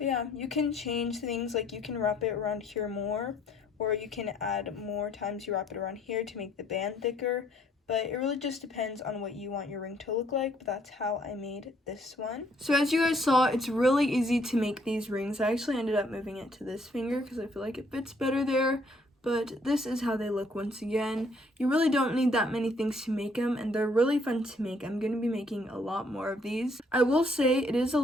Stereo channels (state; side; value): normal; both; correlation 0.65